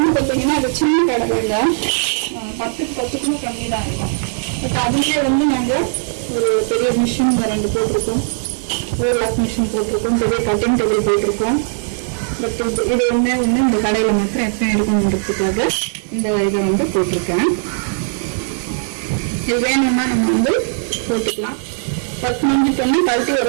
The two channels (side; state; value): left; silent; 67 dB below the other